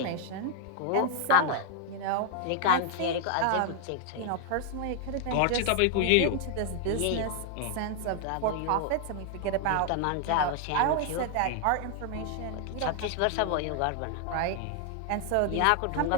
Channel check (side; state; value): both; different; correlation 0.00